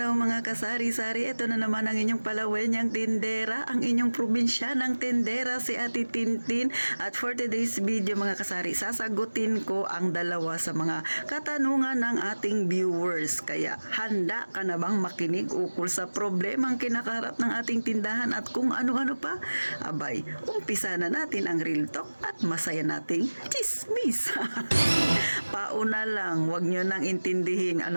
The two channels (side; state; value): both; inverted; correlation -1.00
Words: mga kasari-sari. Ito na naman ang inyong palawenyang tindera, ang inyong probinsyanang tindera, si Ate Tintin. At for today's video mga kasari, sasagutin ko ang dalawa sa mga katanungan ng ating viewers. Kaya handa ka na bang makinig ukol sa problemang kinakaharap ng ating tindahan at kung ano-ano pa? Abay, umpisa na natin ang real talk at masaya nating chismis. Pauna lang, wag nyo nang intindihin